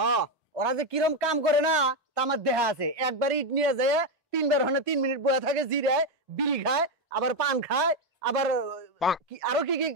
ওরা যে কিরম কাম করে না তা আমার দেহা আছে একবার ইট নিয়ে যায় তিনবার হনে 3 মিনিট বসে থাকে জিরায় বিড়ি খায় আবার পান খায় আবার আরো কি কি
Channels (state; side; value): normal; both; correlation 0.07